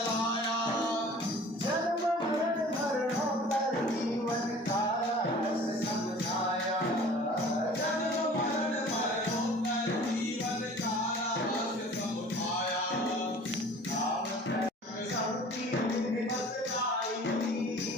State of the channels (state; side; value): normal; both; correlation 0.46